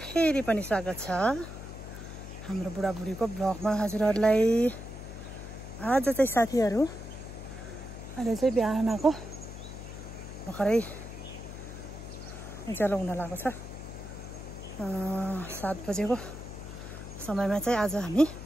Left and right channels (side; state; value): left; noise; hum, 11 dB below the sound